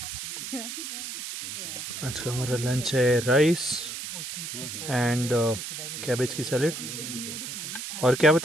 आज का हमारा lunch है rice and cabbage की salad, और क्या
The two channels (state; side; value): noise; right; hiss, 7 dB below the sound